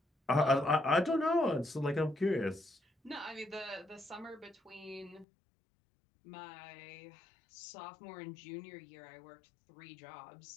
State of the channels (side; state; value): right; drops out; at 5.2 s